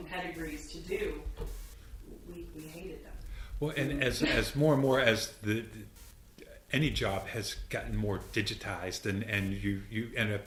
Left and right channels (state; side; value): identical; both; correlation 1.00